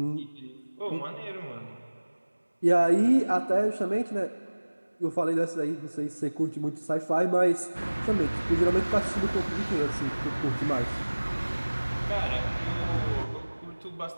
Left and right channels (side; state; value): both; inverted; correlation -1.00